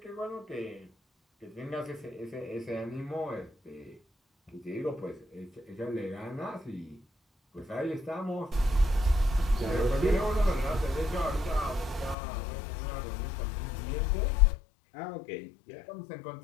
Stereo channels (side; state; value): right; drops out; at 12.2 s